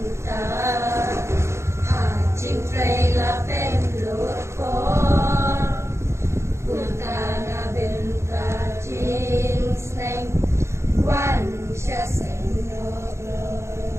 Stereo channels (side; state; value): left; late; 0.13 ms